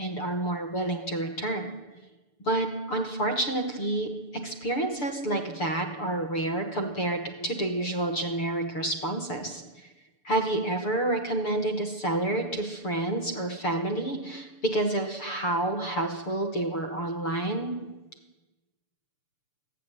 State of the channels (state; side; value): late; right; 6.8 ms